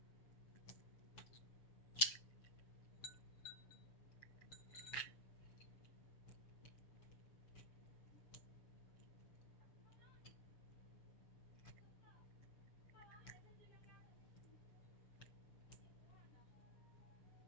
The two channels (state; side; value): late; right; 7.1 ms